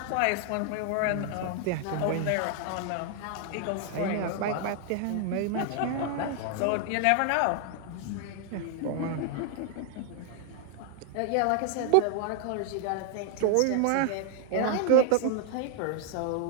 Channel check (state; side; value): different; both; correlation 0.00